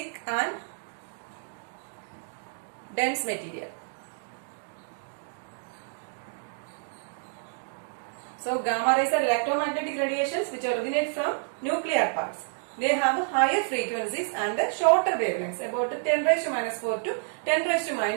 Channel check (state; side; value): silent; left; digital silence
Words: and dense material. So gamma rays are electromagnetic radiations which originate from nuclear parts. They have higher frequencies and shorter wavelengths about 10 raised to minus 4 to 10 raised to